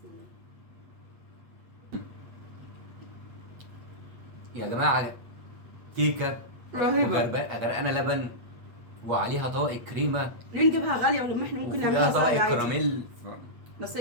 الله يا جماعه. كيكه رهيبه غرقانه لبن وعليها طبقه كريمه. ليه نجيبها غاليه ولما احنا ممكن نعملها طبقه سهله عادي؟ كراميل بس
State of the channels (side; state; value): left; late; 8.3 ms